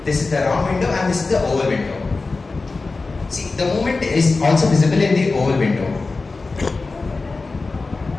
This is the round window, and this is the oval window. See, the movement is also visible in the oval window.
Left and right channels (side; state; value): right; quieter; 3.8 dB